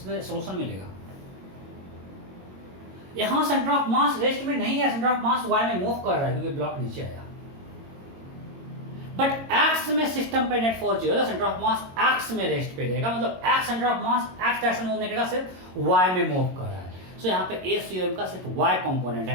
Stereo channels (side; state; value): left; late; 22 ms